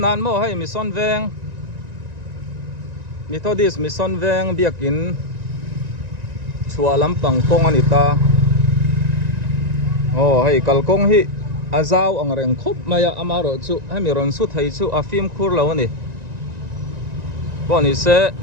mo hay mi son veng Methodist Mission veng biakin chua lampang kong anita hei kalkong hi azau ang reng khop maya amaro chu hemiron su thai chu a film khur lo ni boni se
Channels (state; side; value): late; left; 1.9 ms